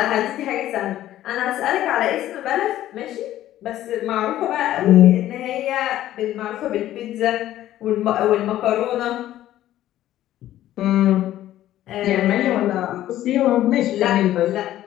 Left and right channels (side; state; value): right; quieter; 13.4 dB